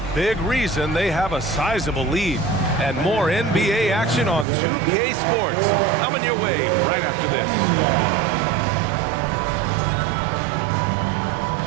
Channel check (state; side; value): drops out; left; at 4.5 s